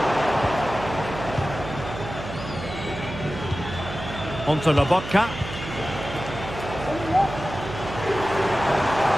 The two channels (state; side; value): noise; right; hum, 9 dB below the sound